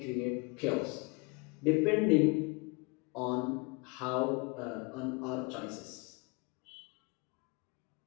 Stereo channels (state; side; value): quieter; right; 30.0 dB